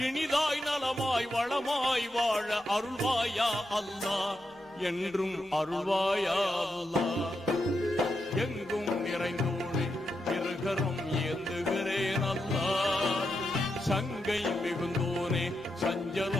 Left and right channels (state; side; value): normal; both; correlation 0.85